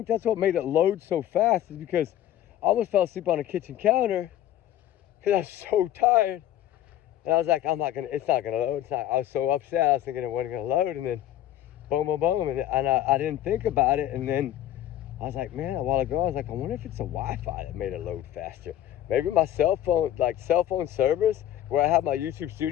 that's what made it load so fast, is because I almost fell asleep on the kitchen counter because I was so tired. And I was like, it's not gonna load. I was so upset. I was thinking it wasn't gonna load, and then boom, boom, boom. And I didn't think about it. And then I was like, man, a while ago, I was like, I wonder if it's the Wi-Fi that made it load faster. Maybe my cell phone service, where I have my YouTube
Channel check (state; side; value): quieter; right; 12.3 dB